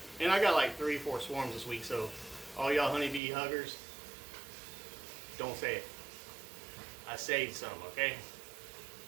I got like 3-4 swarms this week, so all y'all honeybee huggers, don't say it. I saved some, okay?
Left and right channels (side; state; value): left; drops out; at 3.2 s